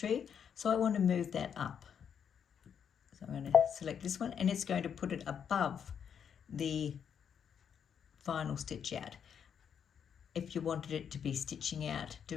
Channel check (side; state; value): right; quieter; 7.8 dB